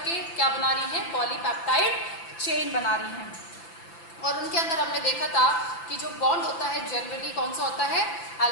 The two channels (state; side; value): late; right; 5.9 ms